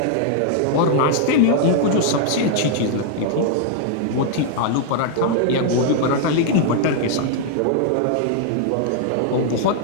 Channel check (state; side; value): different; both; correlation 0.00